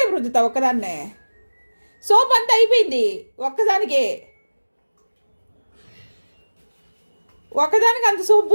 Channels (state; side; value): inverted; both; correlation -1.00